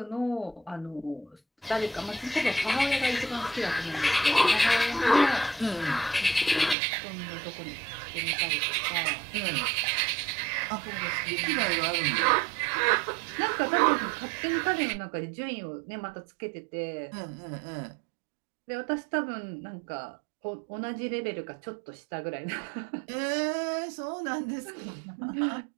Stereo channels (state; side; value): drops out; left; at 6.8 s